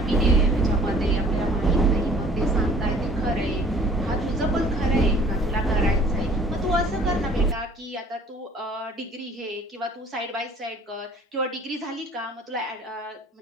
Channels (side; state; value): both; normal; correlation 0.53